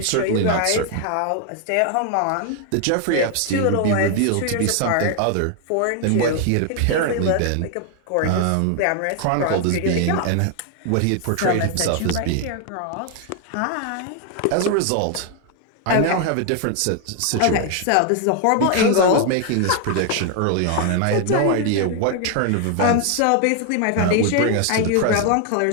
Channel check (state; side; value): different; both; correlation 0.00